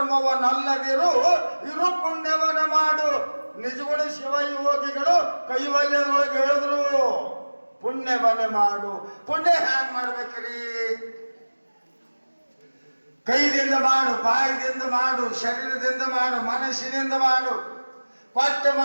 ಇರು ಪುಣ್ಯವನ್ನು ಮಾಡು. ನಿಜಗಳು ಶಿವ ಯೋಗಿಗಳು ಕೈವಲ್ಯದೊಳಗೆ ಹೇಳಿದ್ರು, ಪುಣ್ಯವನ್ನೇ ಮಾಡು. ಪುಣ್ಯ ಹ್ಯಾಂಗ್ ಮಾಡ್ಬೇಕ್ರಿ? ಕೈದಿಂದ ಮಾಡು, ಬಾಯಿದಿಂದ ಮಾಡು, ಶರೀರದಿಂದ ಮಾಡು, ಮನಸ್ಸಿನಿಂದ ಮಾಡು. ಕೊಟ್ಟು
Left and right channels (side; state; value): both; inverted; correlation -1.00